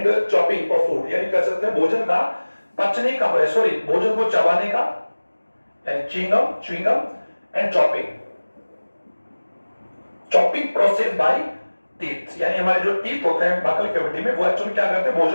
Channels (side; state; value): both; inverted; correlation -1.00